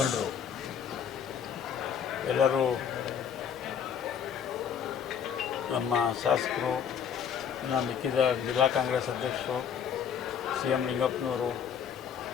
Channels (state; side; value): quieter; right; 7.9 dB